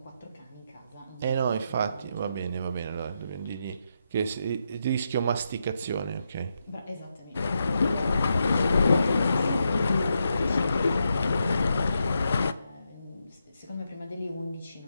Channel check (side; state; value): both; inverted; correlation -0.84